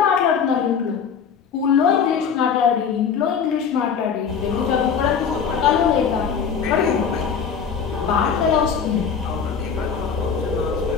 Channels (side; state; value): right; quieter; 6.8 dB